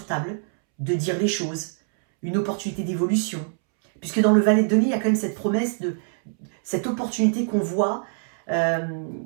table, de dire les choses, une opportunité d'évolution. Puisque dans le valet de denier, il y a quand même cette promesse de cette opportunité qu'on voit,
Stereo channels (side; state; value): left; silent; 63 dB below the other